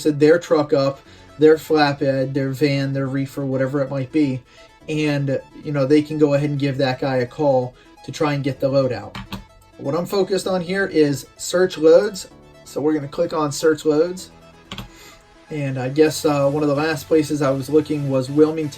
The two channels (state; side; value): identical; both; correlation 1.00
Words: their truck up, their flatbed, their van, their reefer, whatever it might be. And, they can go ahead and give that guy a call to try and get the load out. What I'm focused on here is search loads. So we're going to click on search loads. And I guess one of the last places I was looking was